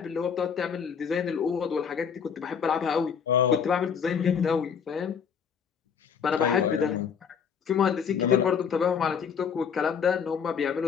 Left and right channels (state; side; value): quieter; right; 6.9 dB